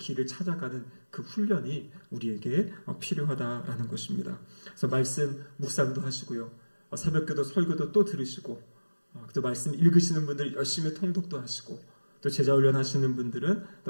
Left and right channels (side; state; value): both; inverted; correlation -1.00